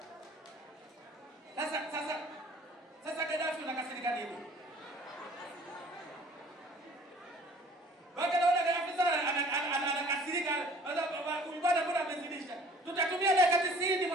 Sasa Gaddafi unakasirika nini? Baka naona Gaddafi sana anakasirika, ulibada bora amezidisha. Tutatumia dakika 90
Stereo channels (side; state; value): both; normal; correlation 0.52